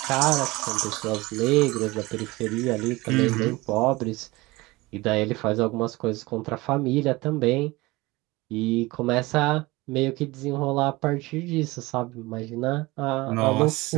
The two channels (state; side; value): quieter; left; 21.5 dB